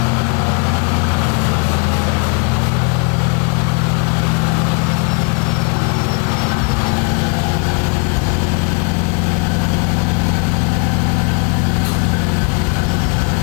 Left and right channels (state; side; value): quieter; right; 34.0 dB